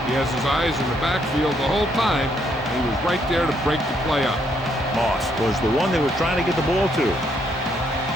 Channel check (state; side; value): normal; both; correlation 0.72